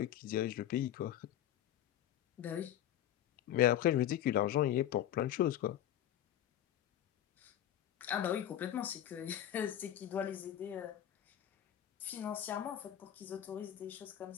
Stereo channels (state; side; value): quieter; right; 11.6 dB